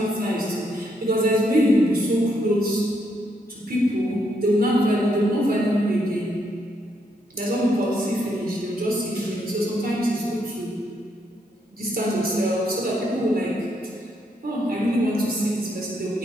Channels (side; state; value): both; normal; correlation 0.76